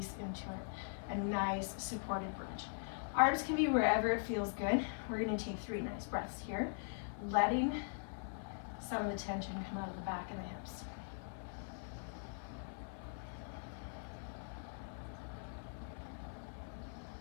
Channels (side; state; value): right; silent; 50 dB below the other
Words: into it. A nice supported bridge. Arms can be wherever it feels good. We're gonna take 3 nice breaths here, letting some of the tension come out of the back and the hips.